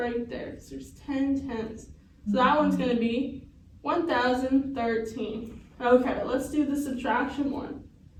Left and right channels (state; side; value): identical; both; correlation 1.00